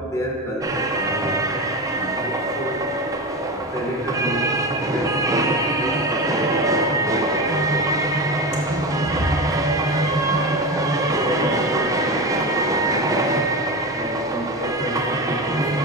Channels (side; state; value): both; normal; correlation 0.22